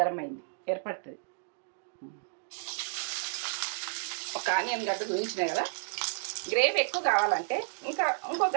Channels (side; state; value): left; silent; digital silence